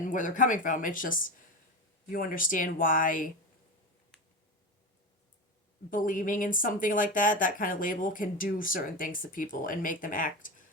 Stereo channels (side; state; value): both; normal; correlation 0.23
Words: where they're coming from. It's just, you understand why believing in something like that kind of label, can do certain things to people and make them act